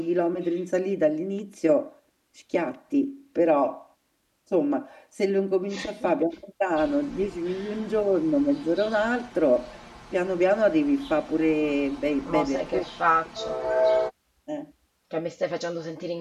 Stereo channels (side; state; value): both; identical; correlation 1.00